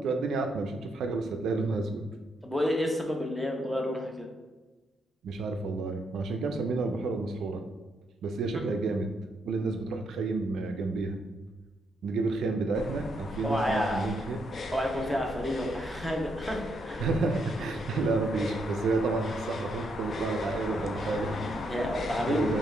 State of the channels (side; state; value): both; normal; correlation 0.77